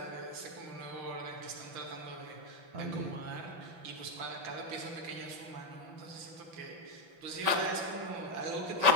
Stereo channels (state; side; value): late; left; 5.9 ms